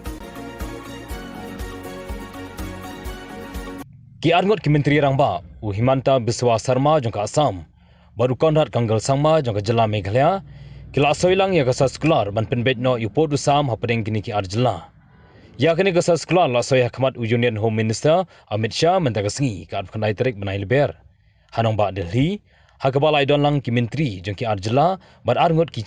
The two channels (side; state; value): both; identical; correlation 1.00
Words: Ki arngot ki menteri rangba Himanta Biswa Sarma jangka Assam baru konrat kanggal sangma jangka jela Meghalaya kila soilang ya gasa sekular ban penbet no upod usam hapadeng kini ki arjela ya kini gasa sekular la soya khmat Union Home Minister Amit Shah mentagasngi ka khandai tarik banai leber hanong ba Delhi hakabalai don lang ki menteri jangki arjela ban arngot ki